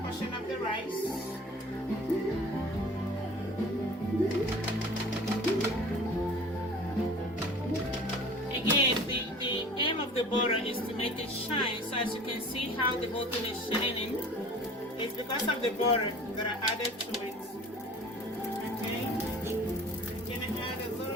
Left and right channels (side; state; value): both; normal; correlation 0.44